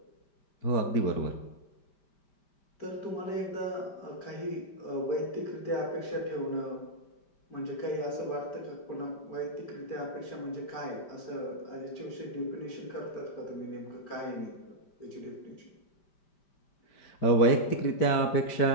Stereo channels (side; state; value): right; late; 5.1 ms